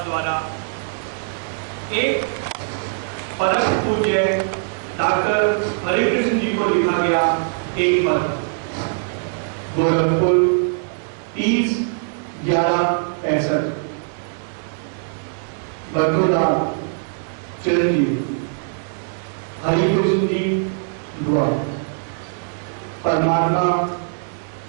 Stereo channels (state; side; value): silent; left; 65 dB below the other